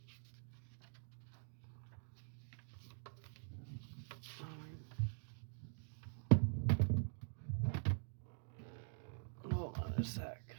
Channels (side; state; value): left; silent; digital silence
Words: Hold on a sec.